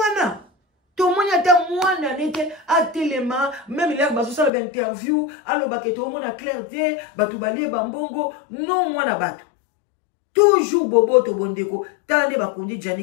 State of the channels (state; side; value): drops out; right; at 4.5 s